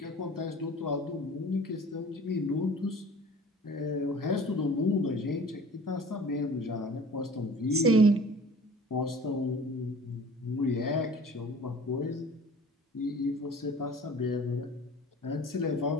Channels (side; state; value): both; normal; correlation 0.45